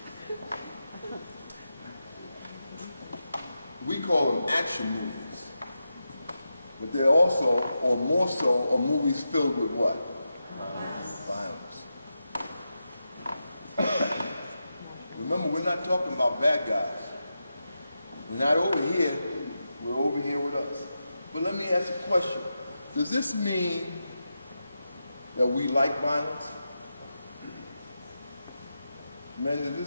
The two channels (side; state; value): both; inverted; correlation -0.89